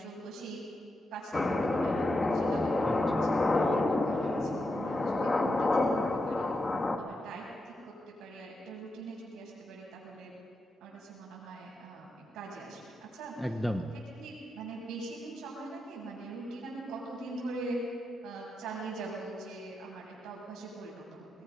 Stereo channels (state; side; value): normal; both; correlation 0.86